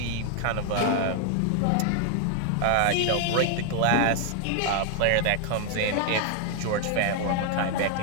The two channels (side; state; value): both; different; correlation 0.00